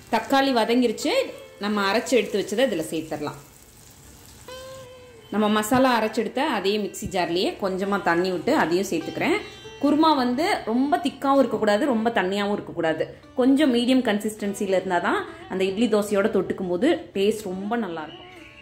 தக்காளி வதங்கிருச்சு. நம்ம அரைச்சி எடுத்து வச்சதை இதில் சேர்த்துடலாம். நம்ம மசாலா அரைச்செடுத்த அதே மிக்ஸி ஜார்லேயே கொஞ்சமாக தண்ணி விட்டு அதையும் சேர்த்துக்கிறேன். குருமா வந்து ரொம்ப திக்காகவும் இருக்கக்கூடாது, ரொம்ப தண்ணியாகவும் இருக்கக்கூடாது. கொஞ்சம் மீடியம் கன்சிஸ்டன்சியில் இருந்தால் தான் அந்த இட்லி தோசையோட தொட்டுக்கும் போது டேஸ்ட் ரொம்ப நல்லாயிருக்கும்.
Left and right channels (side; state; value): both; identical; correlation 1.00